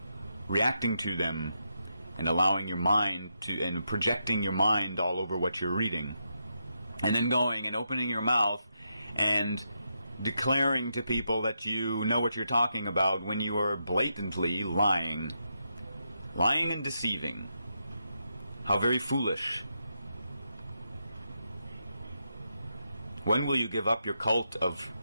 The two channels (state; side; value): inverted; both; correlation -0.83